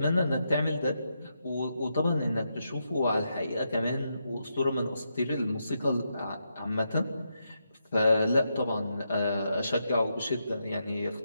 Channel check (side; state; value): both; inverted; correlation -0.83